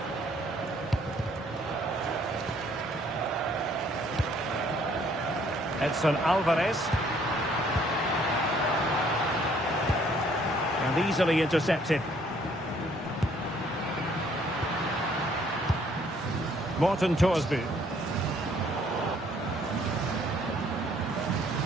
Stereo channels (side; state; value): both; normal; correlation 0.63